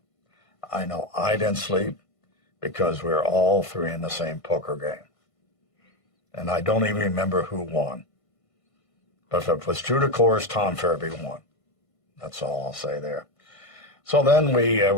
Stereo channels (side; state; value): right; late; 1.5 ms